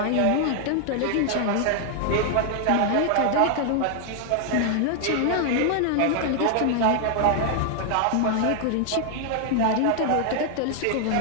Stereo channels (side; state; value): both; different; correlation 0.00